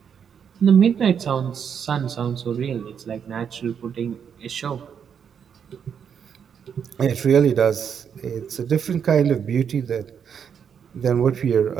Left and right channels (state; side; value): quieter; left; 7.6 dB